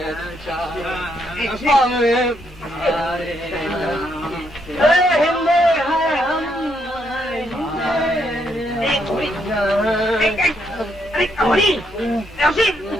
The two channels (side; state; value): both; normal; correlation 0.75